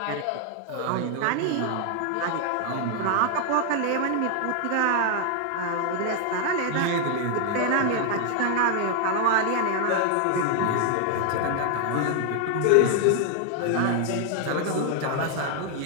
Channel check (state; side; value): different; both; correlation 0.00